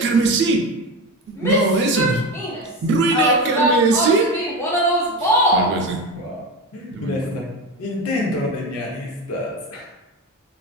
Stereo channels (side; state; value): both; normal; correlation 0.22